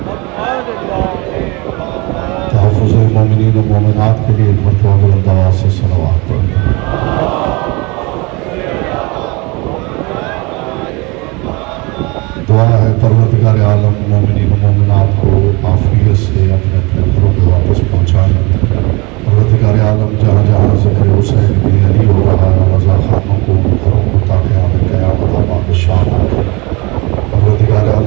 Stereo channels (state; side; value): quieter; left; 26.5 dB